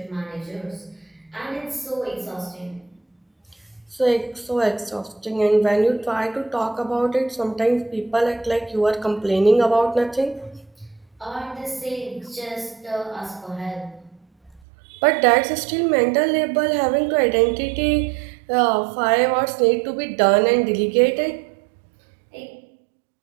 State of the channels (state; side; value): drops out; left; at 14.6 s